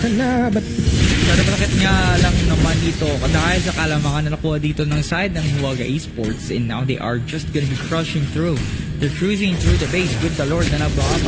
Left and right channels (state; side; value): identical; both; correlation 1.00